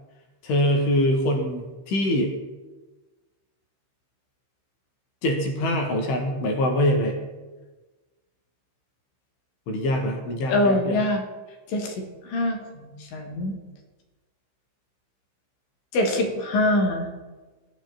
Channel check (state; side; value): late; right; 15 ms